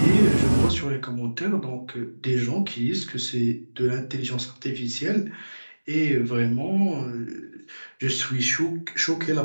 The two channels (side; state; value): both; inverted; correlation -1.00